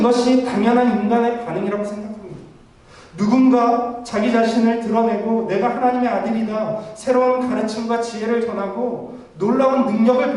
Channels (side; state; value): both; identical; correlation 1.00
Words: 당연한 인간의 반응이라고 생각합니다. 누군가 자기 자신을 드러내고 내가 하나님의 아들이다, 새로운 가르침과 지혜를 전하고 놀라운